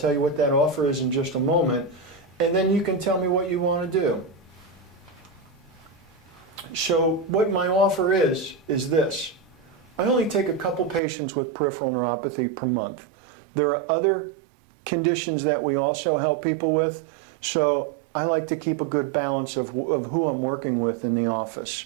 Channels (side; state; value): left; drops out; at 11.0 s